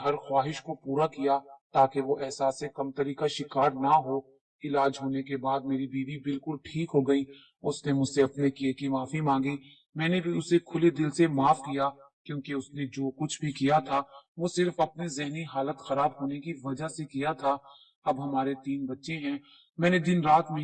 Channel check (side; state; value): both; identical; correlation 1.00